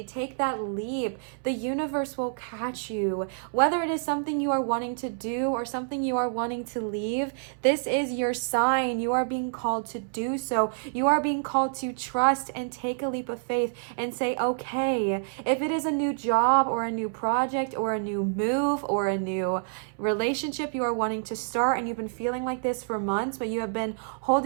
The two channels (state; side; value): silent; left; 60 dB below the other